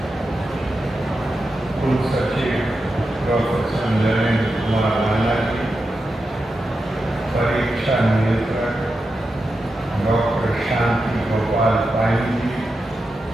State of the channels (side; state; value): both; normal; correlation 0.89